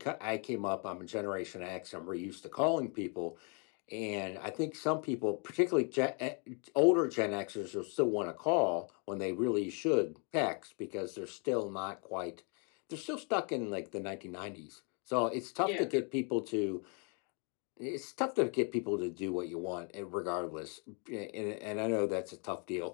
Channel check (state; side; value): quieter; right; 37.8 dB